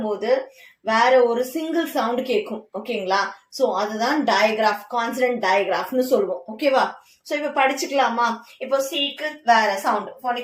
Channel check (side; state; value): both; identical; correlation 1.00